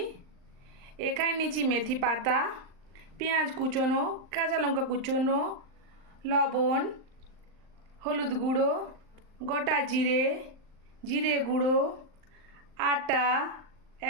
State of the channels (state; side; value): late; left; 39 ms